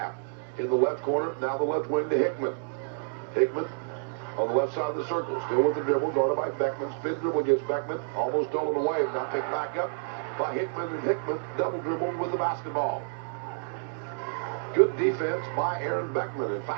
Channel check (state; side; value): silent; left; digital silence